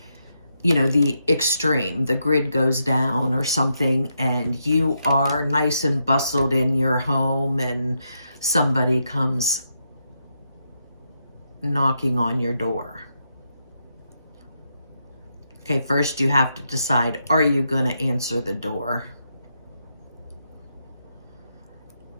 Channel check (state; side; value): inverted; both; correlation -0.81